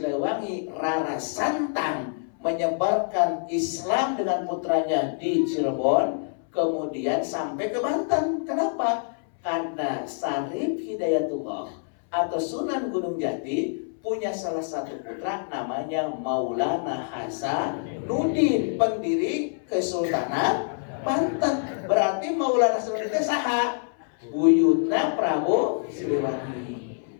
Rara Santang menyebarkan Islam dengan putranya di Cirebon, kemudian sampai ke Banten. Kenapa? Karena Syarif Hidayatullah atau Sunan Gunung Jati punya salah satu putra namanya Maulana Hasanuddin, pendiri Kesultanan Banten. Berarti Maulana Hasanuddin itu saha? Buyutna Prabu Siliwangi.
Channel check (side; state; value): right; silent; 61 dB below the other